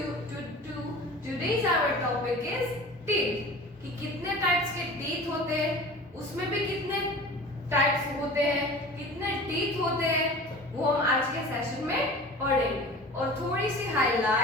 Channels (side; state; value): both; normal; correlation 0.39